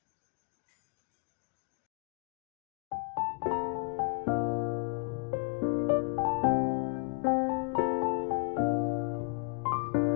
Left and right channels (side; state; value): right; quieter; 33.4 dB